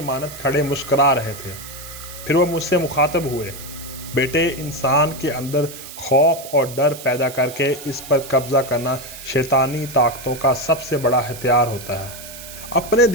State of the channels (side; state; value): right; noise; hiss, 14 dB below the sound